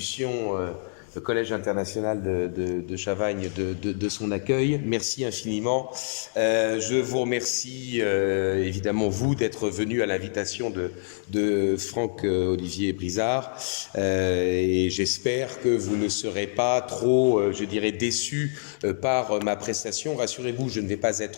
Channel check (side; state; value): right; silent; digital silence